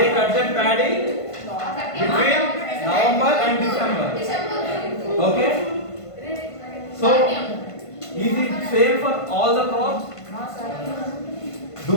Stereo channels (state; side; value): late; right; 1.5 ms